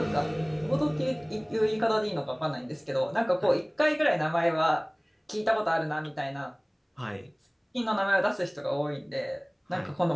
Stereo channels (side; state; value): both; identical; correlation 1.00